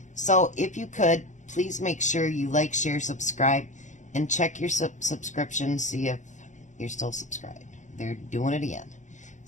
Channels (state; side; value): late; right; 0.35 ms